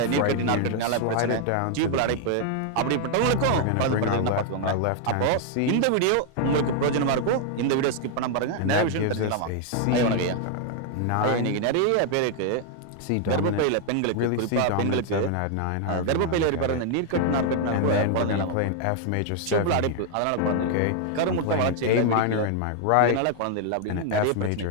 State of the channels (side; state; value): both; different; correlation 0.00